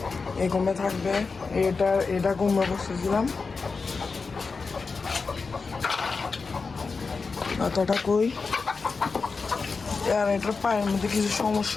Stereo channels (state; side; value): quieter; right; 4.6 dB